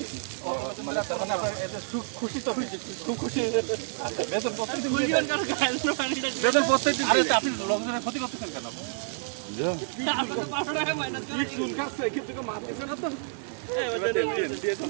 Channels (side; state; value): left; silent; 59 dB below the other